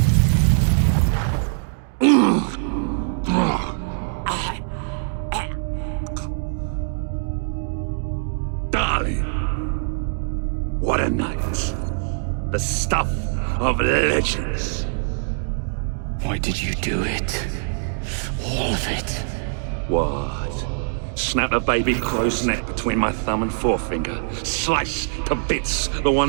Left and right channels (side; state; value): left; silent; digital silence